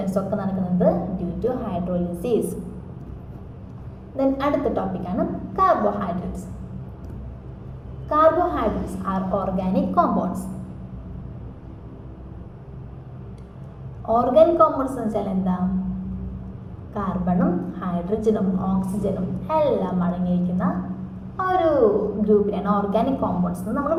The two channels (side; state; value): both; identical; correlation 1.00